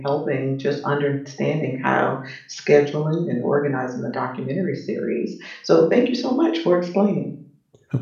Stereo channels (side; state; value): both; identical; correlation 1.00